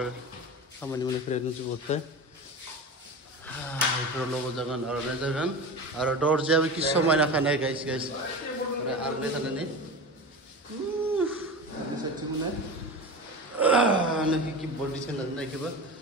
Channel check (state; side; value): normal; both; correlation 0.29